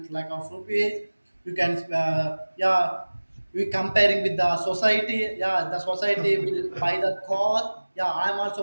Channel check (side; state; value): both; inverted; correlation -1.00